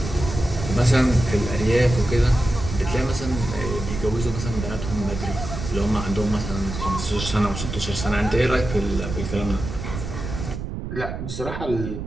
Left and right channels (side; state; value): right; noise; rumble, 7 dB below the sound